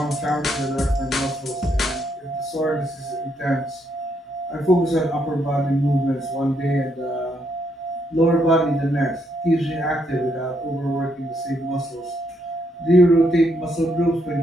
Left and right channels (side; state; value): both; normal; correlation 0.75